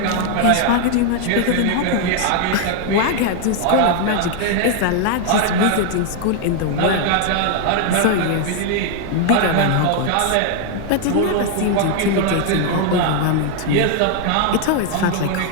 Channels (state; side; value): different; both; correlation 0.00